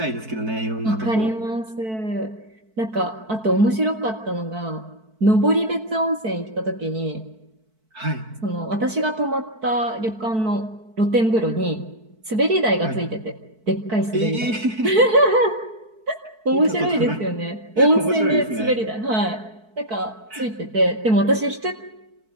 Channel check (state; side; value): late; left; 4.6 ms